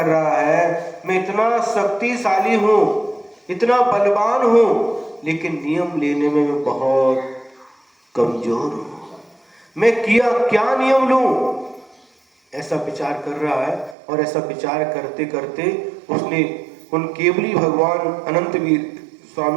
रहा है, मैं इतना शक्तिशाली हूं, इतना बलवान हूं, लेकिन नियम लेने में मैं बहुत कमजोर हूं। मैं क्या नियम लूं? ऐसा विचार कर रहा है। और ऐसा विचार करते करते उसने उन केवली भगवान अनंत वीर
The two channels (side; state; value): left; drops out; at 14.0 s